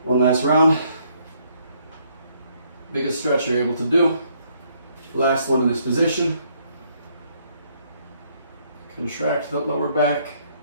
One last round. Biggest stretch you're able to do. Last one in this position. Contract the lower back.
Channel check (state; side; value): inverted; both; correlation -0.69